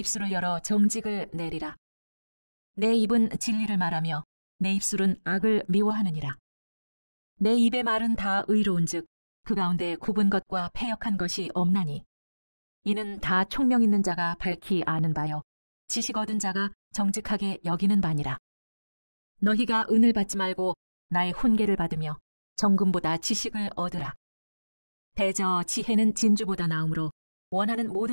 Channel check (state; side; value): inverted; both; correlation -1.00